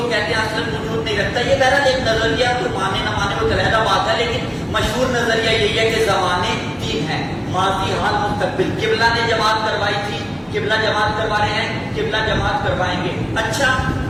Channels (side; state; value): both; identical; correlation 1.00